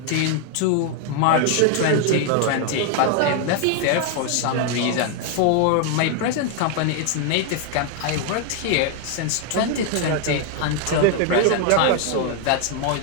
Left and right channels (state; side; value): different; both; correlation 0.00